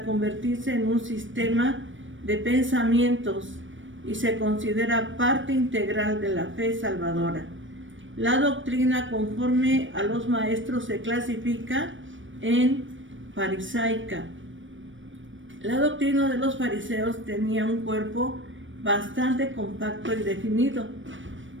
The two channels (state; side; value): late; left; 0.56 ms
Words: convertirse en un sistema de pensamientos y se considera parte integral de la fe salvadora. La doctrina, conforme a los maestros, se clasifica en farisaica. La doctrina de los fariseos tenía un cuerpo bastante compacto y definido,